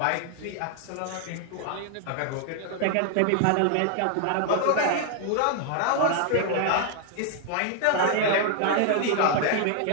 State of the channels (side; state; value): both; different; correlation 0.00